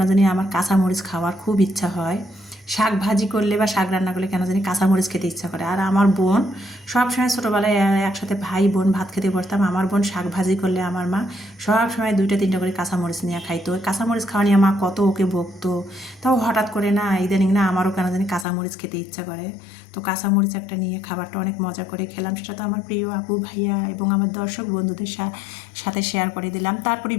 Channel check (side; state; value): right; drops out; at 18.4 s